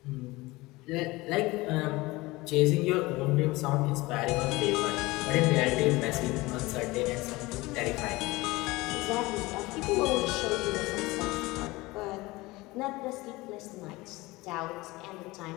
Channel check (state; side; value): quieter; right; 21.2 dB